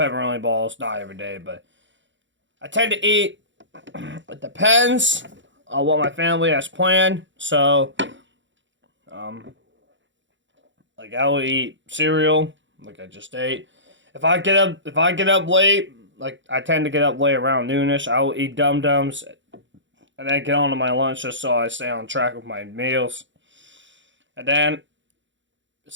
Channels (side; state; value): left; late; 0.54 ms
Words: balls, not every day, but I tend to eat. It depends on what my family has planned. So, like I will eat cereal, like I just ate. If I get up late, like I tend to get up late around noonish, I will eat Dum Dums, and then get on to my lunch just so I stay on track with my meals. And then